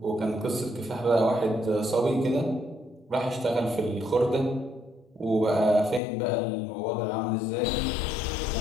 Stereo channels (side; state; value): right; drops out; at 6.0 s